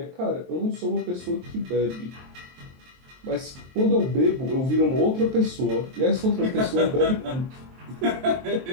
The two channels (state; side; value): late; left; 23 ms